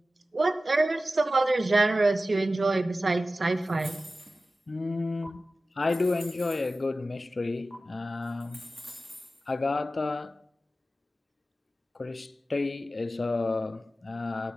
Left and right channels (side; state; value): both; normal; correlation 0.95